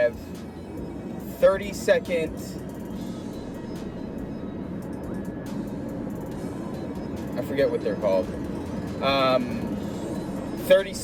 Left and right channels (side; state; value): both; identical; correlation 1.00